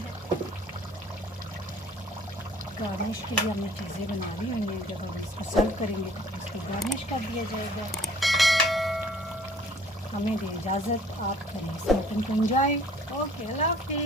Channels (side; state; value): both; normal; correlation 0.54